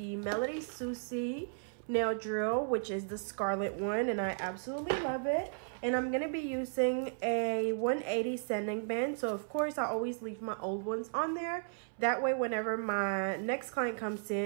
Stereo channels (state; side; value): silent; left; 55 dB below the other